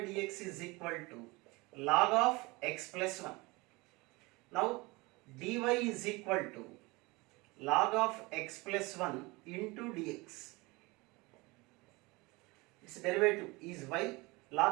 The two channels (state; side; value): quieter; left; 24.2 dB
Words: dx is equal to log of x plus 1. Now dy is equal to log of x plus 1 into dx. Its derivative is y,